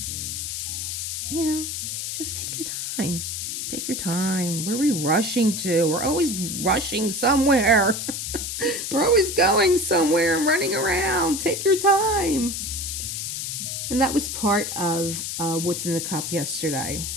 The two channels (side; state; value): left; noise; hiss, 4 dB below the sound